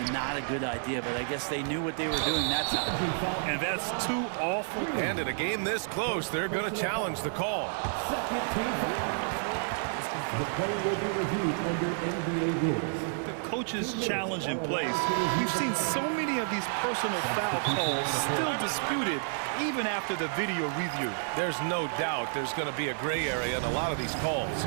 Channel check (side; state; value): left; silent; digital silence